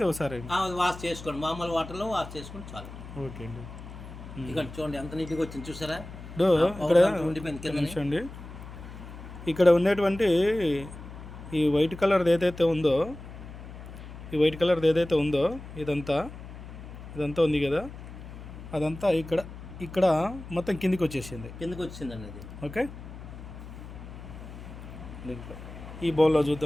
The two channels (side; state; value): left; noise; hum, 13 dB below the sound